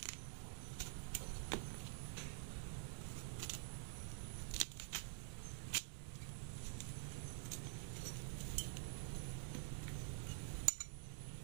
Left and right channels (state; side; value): silent; left; digital silence